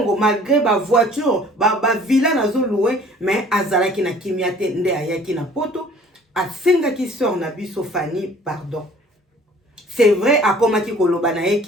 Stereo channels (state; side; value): normal; both; correlation 0.52